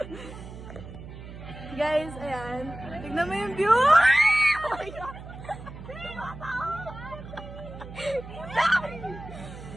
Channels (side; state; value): right; noise; hum, 13 dB below the sound